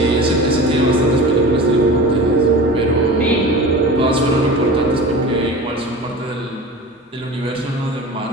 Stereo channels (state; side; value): normal; both; correlation 0.35